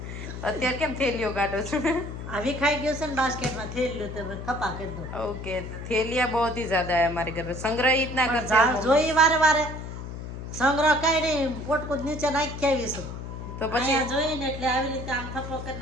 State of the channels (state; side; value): noise; left; hum, 8 dB below the sound